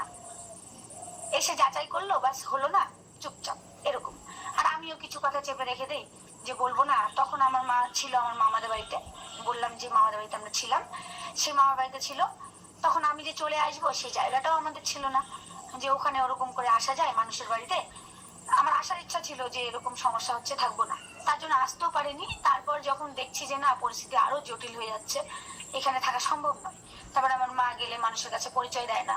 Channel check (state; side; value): identical; both; correlation 1.00